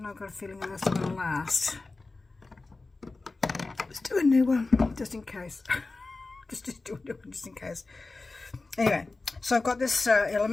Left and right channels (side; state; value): right; quieter; 3.5 dB